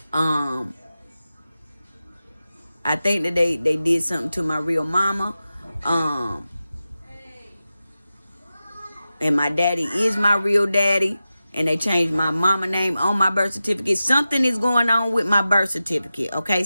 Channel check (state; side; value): inverted; both; correlation -0.93